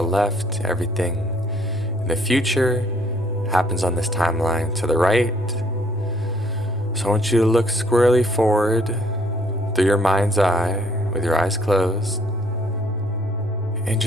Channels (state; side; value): normal; both; correlation 0.63